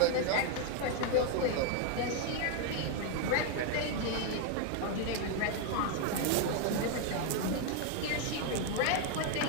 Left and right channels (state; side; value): different; both; correlation 0.01